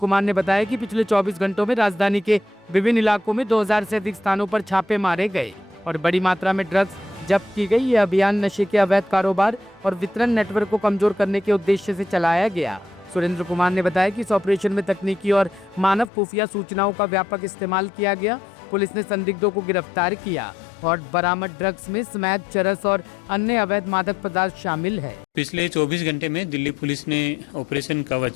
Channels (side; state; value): right; drops out; at 16.1 s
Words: ने बताया कि पिछले 24 घंटों में राजधानी के विभिन्न इलाकों में 2000 से अधिक स्थानों पर छापे मारे गए और बड़ी मात्रा में ड्रग्स जब्त की गई। यह अभियान नशे के अवैध कारोबार और वितरण नेटवर्क को कमजोर करने के उद्देश्य से चलाया गया। सुरेंद्र कुमार ने बताया कि इस ऑपरेशन में तकनीकी और मानव खुफिया सूचनाओं का व्यापक इस्तेमाल किया गया। पुलिस ने संदिग्धों को गिरफ्तार किया और बरामद ड्रग्स में स्मैक, चरस और अन्य अवैध मादक पदार्थ शामिल है। पिछले 24 घंटे में दिल्ली पुलिस ने ऑपरेशन